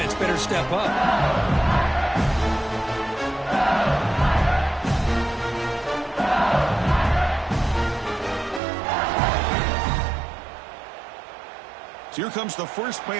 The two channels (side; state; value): left; drops out; at 8.6 s